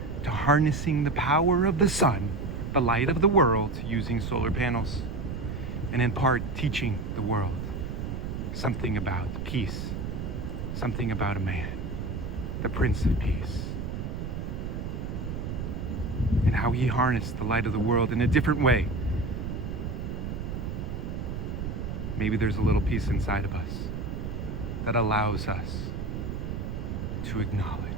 to harnessing the power of the sun, the light of the world, using solar panels, and in part teaching the world something about peace, something about a man, the Prince of Peace, and how he harnessed the light of the world in a different way. Maybe there's a little piece inside of us that allows us to acknowledge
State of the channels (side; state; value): right; noise; rumble, 4 dB below the sound